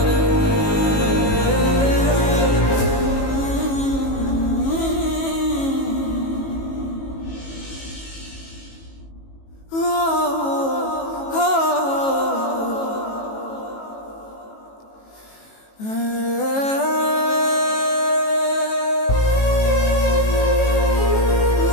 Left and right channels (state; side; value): late; right; 18 ms